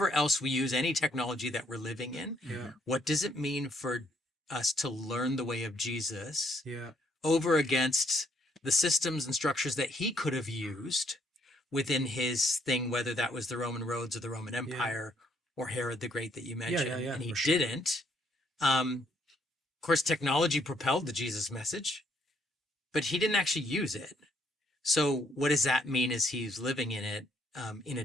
else we use any technology that we're living in. yeah, What does it mean for us to learn the way of Jesus yeah. over against the systems and structures that he could have used within his thing, whether that was the Roman roads or the Roman Empire or Herod the Great that you mentioned, yeah, and he for sure. didn't. Of course, technology propelled the Jesus message, but he didn't actually use it. So what does that mean as he's living in it in a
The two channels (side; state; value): both; normal; correlation 0.70